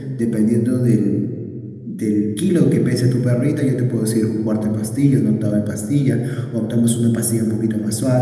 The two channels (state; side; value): identical; both; correlation 1.00